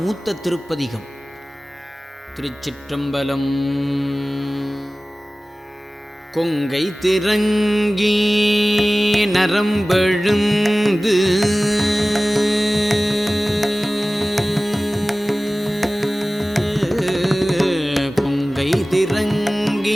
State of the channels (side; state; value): both; normal; correlation 0.97